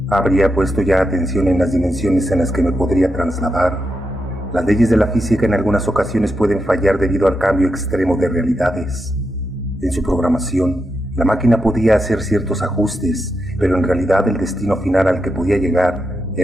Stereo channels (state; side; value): normal; both; correlation 0.85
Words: Habría puesto ya atención en las dimensiones en las que me podría trasladar. Las leyes de la física en algunas ocasiones pueden fallar debido al cambio extremo de realidades. En su programación, la máquina podía hacer ciertos ajustes, pero en realidad el destino final al que podía llegar